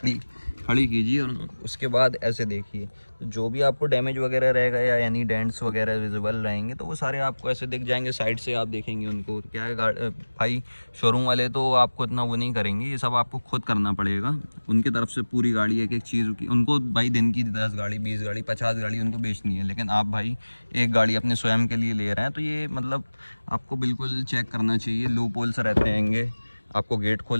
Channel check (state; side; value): inverted; both; correlation -1.00